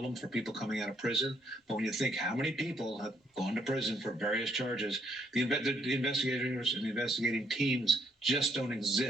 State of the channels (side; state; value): both; normal; correlation 0.72